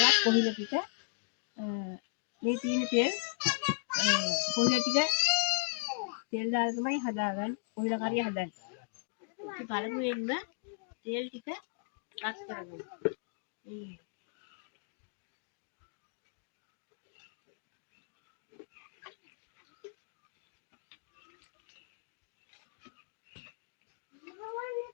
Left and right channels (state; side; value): silent; right; digital silence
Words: කොහිල ටික. මේ තියෙන තෙල් කොහිල ටික තෙල් දාලා තමයි හදාගන්නේ. කොහිල කරිය හදන්නේ. ඉතින් පළමුවෙන්ම තෙල් ටික රත් කරගමු.